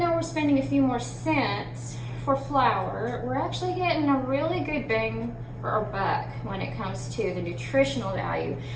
we're spending a few more cents for flour, we're actually getting a really good bang for our buck when it comes to the nutritional value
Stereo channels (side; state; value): both; identical; correlation 1.00